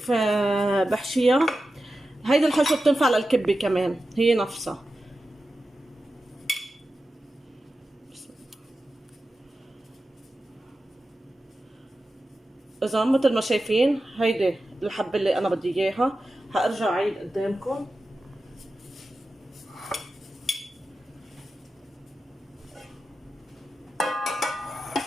بحشيها. هيدي الحشوة بتنفع للكبة كمان هي نفسها. اذا مثل ما شايفين هيدي الحبة اللي انا بدي اياها. هارجع اعيد قدامكم.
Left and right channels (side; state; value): both; normal; correlation 0.92